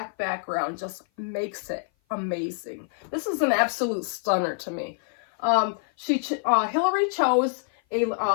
background just makes it amazing. This is an absolute stunner to me. Hillary chose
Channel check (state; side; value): silent; right; 56 dB below the other